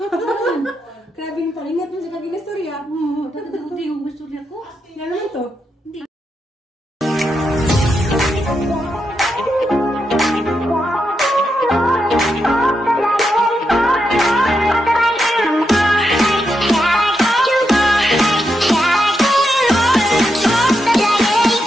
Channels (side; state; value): both; normal; correlation 0.84